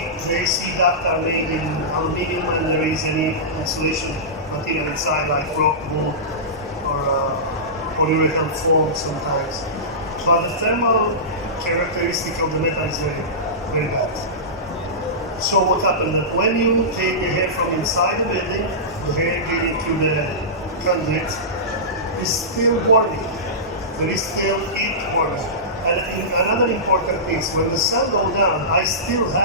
the AC duct are made in aluminum and there is any insulation material inside like rock wool or polyurethane foam sometimes. But the thermal characteristic of the metal is very, very bad. So what happens that when you take the air from inside the building, the air getting to the conduit is still warming. There is still heat warming. And another important thing is when the sun goes down, I still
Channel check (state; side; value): normal; both; correlation -0.18